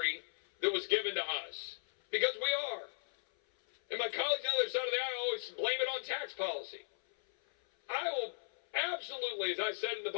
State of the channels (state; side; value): silent; right; 53 dB below the other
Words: that was given to us? Because we are. And my colleagues on the other side of the aisle always blame it on tax policy. I will absolutely, as I said in the